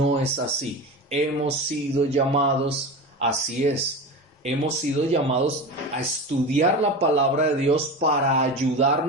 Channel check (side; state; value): both; normal; correlation 0.27